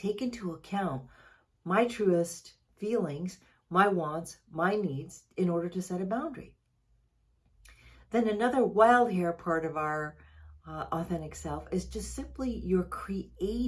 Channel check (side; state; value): both; identical; correlation 1.00